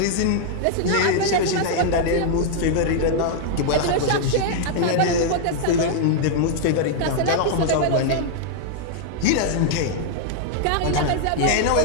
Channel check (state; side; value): different; both; correlation -0.01